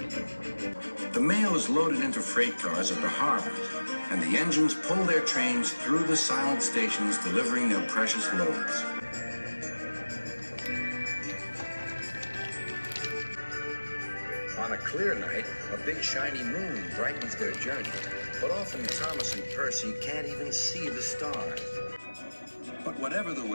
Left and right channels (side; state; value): both; inverted; correlation -1.00